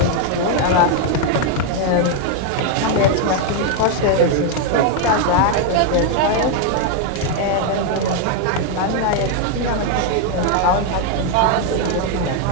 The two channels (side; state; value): both; different; correlation 0.01